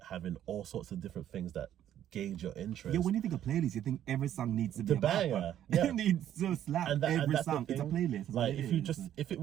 having all sorts of different things that gauge your interest. Yeah, when you think of playlist, you think every song needs to be a banger. Yeah. It needs to slap every song. It's a playlist. Like, if it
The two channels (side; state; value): left; quieter; 11.2 dB